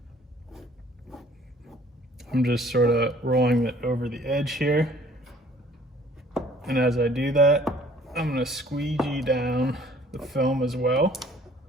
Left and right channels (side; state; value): both; normal; correlation 0.56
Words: I'm just sort of rolling it over the edge here. And as I do that, I'm gonna squeegee down the film as well